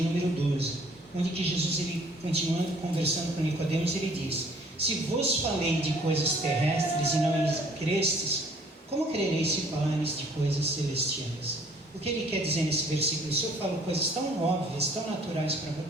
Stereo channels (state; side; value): normal; both; correlation 0.58